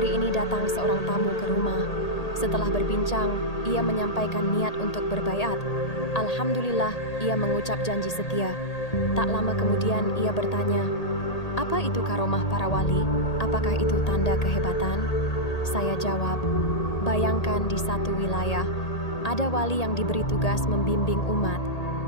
ini datang seorang tamu ke rumah. Setelah berbincang, ia menyampaikan niat untuk berbaiat. Alhamdulillah, ia mengucap janji setia. Tak lama kemudian ia bertanya, apa itu karomah para wali? Apakah itu tanda kehebatan? Saya jawab, bayangkan di satu wilayah, ada wali yang diberi tugas membimbing umat,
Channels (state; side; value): late; right; 1.8 ms